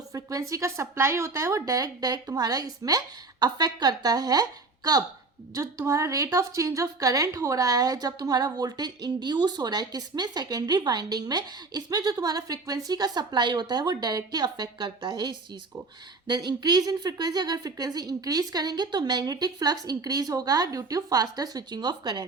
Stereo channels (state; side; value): quieter; left; 3.8 dB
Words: फ्रीक्वेंसी का सप्लाई होता है वो डायरेक्ट तुम्हारा इसमें अफेक्ट करता है. कब, जो तुम्हारा rate of change of current हो रहा है जब तुम्हारा वोल्टेज इंड्यूस हो रहा है किसमें, सेकेंडरी वाइंडिंग में, इसमें जो तुम्हारा फ्रीक्वेंसी का सप्लाई होता है वो डायरेक्टली अफेक्ट करता है इस चीज़ को। देन इंक्रीज इन फ्रीक्वेंसी, अगर फ्रीक्वेंसी इंक्रीज करेंगे तो मैग्नेटिक फ्लक्स इंक्रीज होगा due to faster switching of